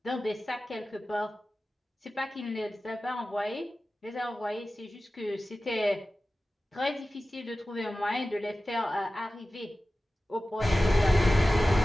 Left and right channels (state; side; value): normal; both; correlation 0.96